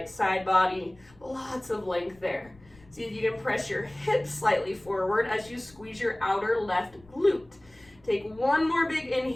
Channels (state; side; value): noise; left; rumble, 27 dB below the sound